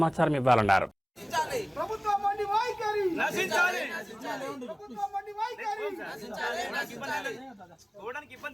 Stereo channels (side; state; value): both; identical; correlation 1.00